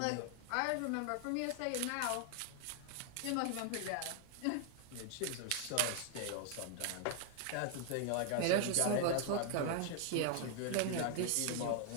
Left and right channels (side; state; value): both; different; correlation 0.00